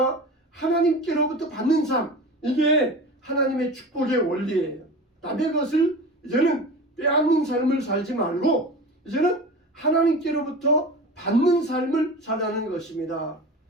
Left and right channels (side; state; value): both; normal; correlation 0.33